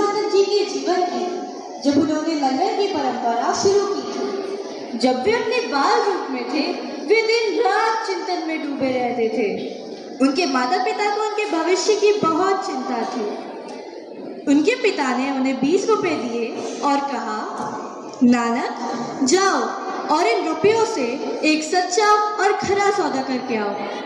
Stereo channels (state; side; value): identical; both; correlation 1.00